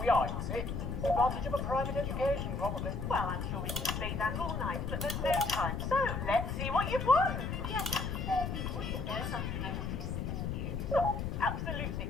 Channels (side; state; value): left; noise; rumble, 3 dB below the sound